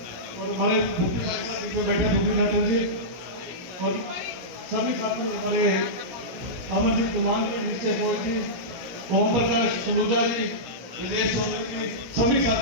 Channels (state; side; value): late; left; 17 ms